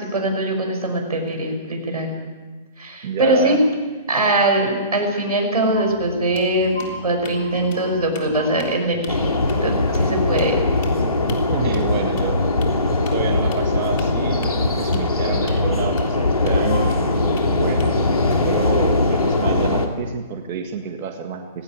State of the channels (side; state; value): both; inverted; correlation -0.48